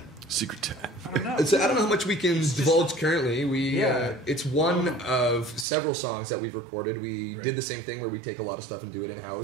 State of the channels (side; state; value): left; drops out; at 5.7 s